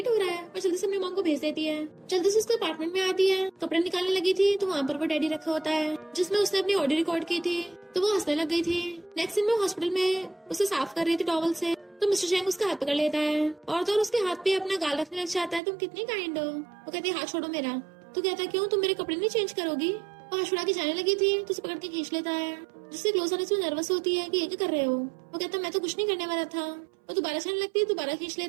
हो रहा है। और जल्दी से अपनी मॉम को भेज देती है। जल्दी से उसके अपार्टमेंट में आती है, कपड़े निकालने लगी थी तो वहाँ पर वो डैडी रखा होता है जिसमें उसने अपनी ऑडियो रिकॉर्ड की थी तो वो हंसने लग गई थी। नेक्स्ट दिन में हॉस्पिटल में उसे साफ कर रही थी टॉवल से तो मिस्टर शेंग उसका हाथ पकड़ लेता है और तो उसके हाथ पे अपना गाल रखने लग जाता है। तुम कितनी काइंड हो। वो कहती है हाथ छोड़ो मेरा। तो कहता है क्यों, तुम मेरे कपड़े नहीं चेंज करोगी? वो हाथ छुड़ा के जाने लगी थी तो उसे पकड़ के खींच लेता है जिससे क्लोज आने से नर्वस होती है कि ये क्या कर रहे हो। वो कहता है मैं तो कुछ नहीं करने वाला था। वो दोबारा जाने लगती है, दोबारा खींच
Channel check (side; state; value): left; drops out; at 15.6 s